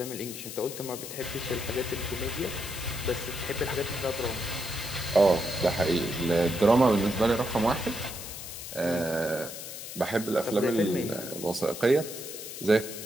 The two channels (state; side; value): noise; left; hiss, 9 dB below the sound